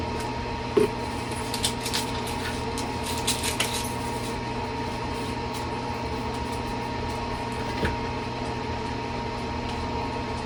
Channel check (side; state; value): both; identical; correlation 1.00